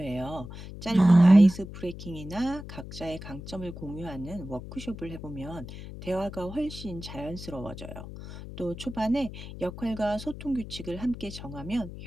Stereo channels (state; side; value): noise; left; hum, 12 dB below the sound